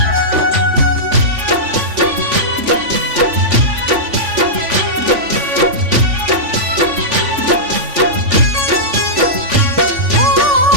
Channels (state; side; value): late; left; 3.5 ms